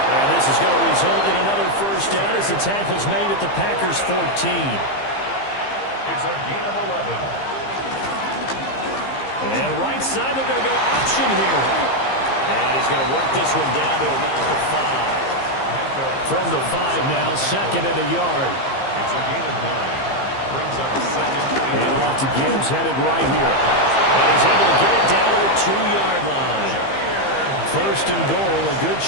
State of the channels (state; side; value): late; right; 15 ms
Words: And this is going to result in another first down as the tackle's made at the Packers' 14. It's a gain of 11. And right side, they're going to go option here. And he's going to work this one down to about the 5. From the 5 now, 2nd and a yard. It's a gain of 9. Brings up 2nd and off to Gibbs, headed right here. And he's able to get it down to the 2-yard line. 1st and goal, a good